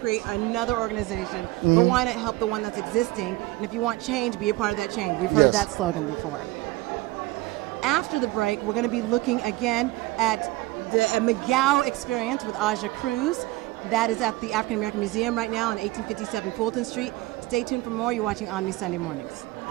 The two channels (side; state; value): left; quieter; 18.9 dB